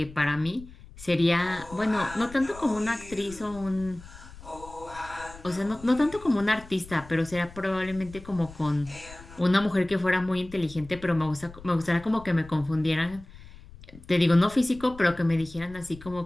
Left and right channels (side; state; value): left; noise; rumble, 18 dB below the sound